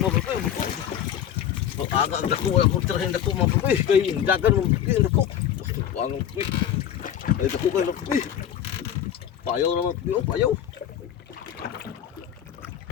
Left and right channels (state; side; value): quieter; right; 10.0 dB